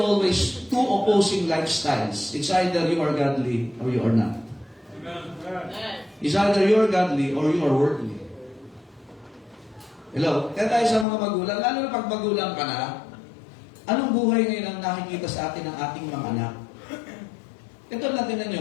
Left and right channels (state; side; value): drops out; right; at 11.1 s